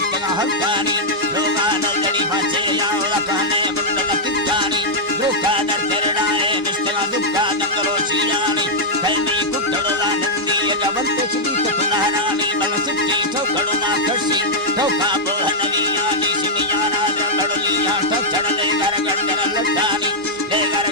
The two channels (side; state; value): both; normal; correlation -0.06